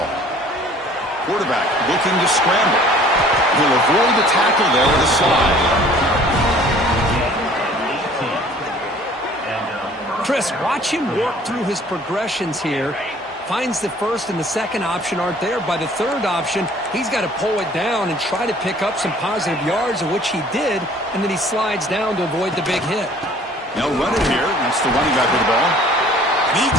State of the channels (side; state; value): both; normal; correlation 0.52